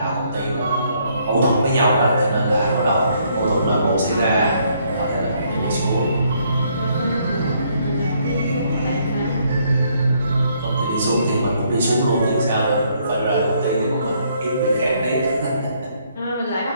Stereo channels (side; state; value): both; inverted; correlation -0.69